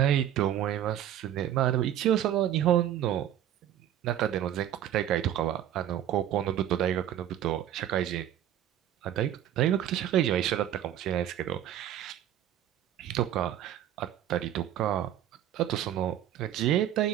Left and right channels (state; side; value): quieter; left; 11.3 dB